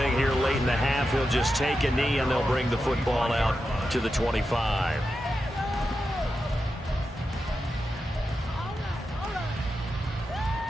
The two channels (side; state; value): both; normal; correlation 0.89